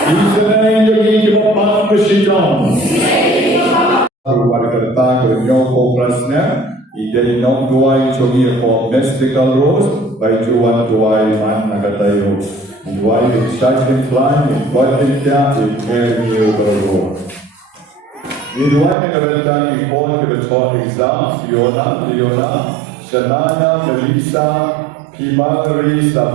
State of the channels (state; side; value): drops out; left; at 18.9 s